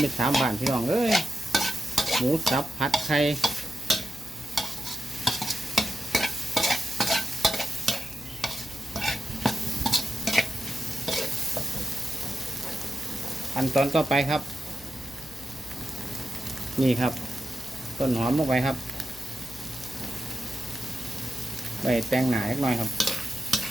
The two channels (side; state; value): left; noise; hum, 19 dB below the sound